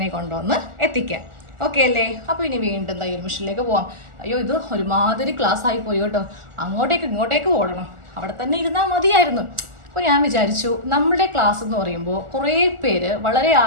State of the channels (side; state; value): left; late; 1.4 ms